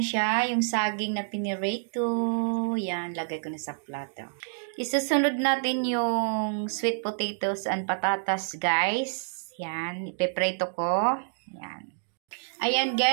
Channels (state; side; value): silent; left; digital silence